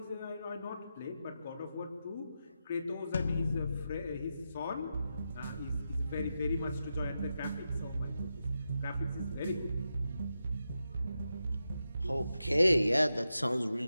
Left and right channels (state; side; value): inverted; both; correlation -0.88